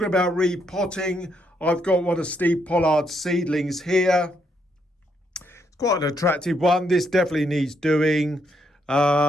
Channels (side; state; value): both; normal; correlation 0.76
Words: about repotting, I've got one of Steve Pollard's seedlings here. It's quite an attractive one. This definitely needs doing.